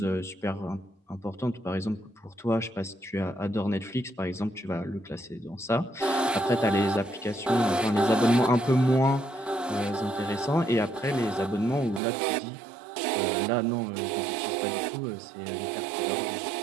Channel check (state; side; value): drops out; left; at 12.0 s